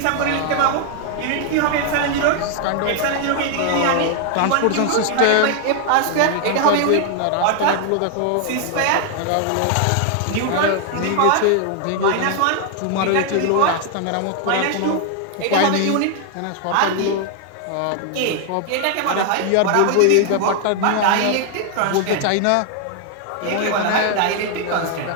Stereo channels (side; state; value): both; different; correlation 0.00